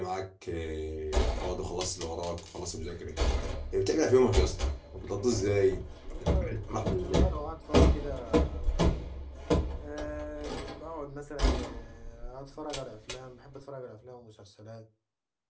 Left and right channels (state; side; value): identical; both; correlation 1.00